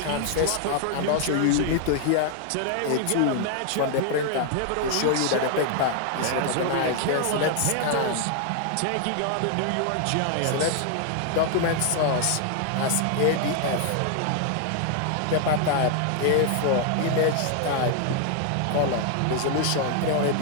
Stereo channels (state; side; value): different; both; correlation 0.00